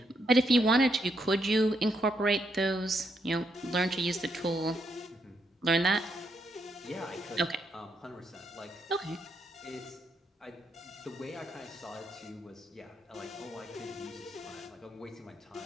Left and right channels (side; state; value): both; normal; correlation 0.78